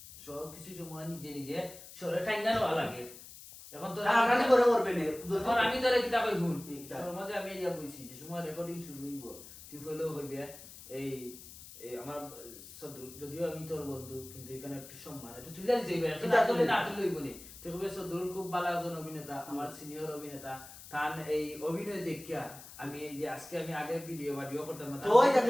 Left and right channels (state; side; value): noise; left; hiss, 16 dB below the sound